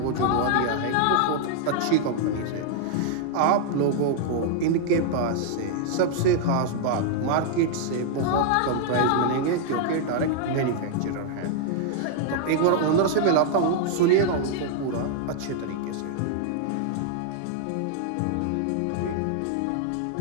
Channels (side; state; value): both; different; correlation -0.01